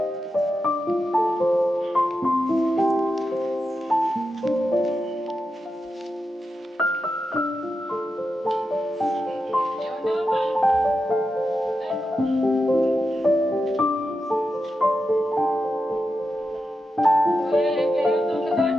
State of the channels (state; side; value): normal; both; correlation 0.88